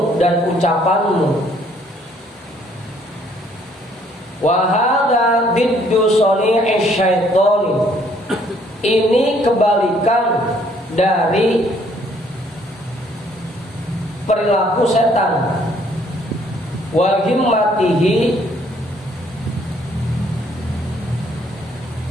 dan ucapanmu. Wa hadza diddu sani'ish syaitani, ini kebalikan dari perilaku setan. Wa himmatihi,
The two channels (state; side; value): normal; both; correlation 0.64